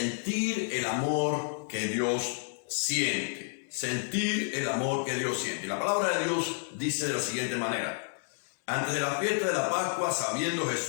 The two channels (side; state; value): right; silent; 58 dB below the other